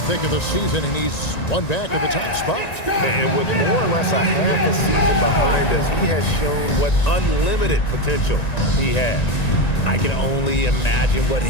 thick of the season, and he's one back at the top spot. And with more or less a half a season behind us, he has shown what unlimited potential he has. I can only imagine what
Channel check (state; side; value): late; right; 1.9 ms